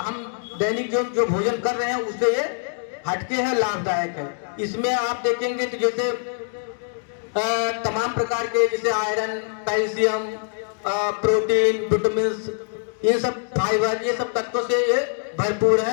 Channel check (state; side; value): quieter; right; 39.1 dB